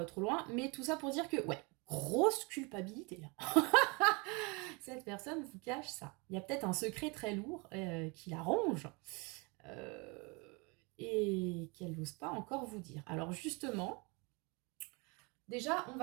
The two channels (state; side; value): quieter; left; 29.3 dB